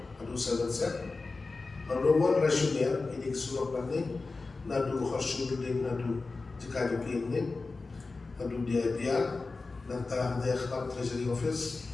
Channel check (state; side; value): quieter; right; 3.8 dB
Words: adu sahabat set nomor rasional ini kesulap nanti nadu khasud ding nadu jika jokin ni adu dia nanta dia khab treasury office